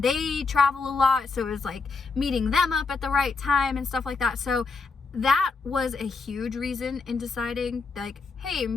they travel a lot, so it was like meeting them up at the right time and stuff like that. So that was a huge reason in deciding, like, hey,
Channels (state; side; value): quieter; right; 4.4 dB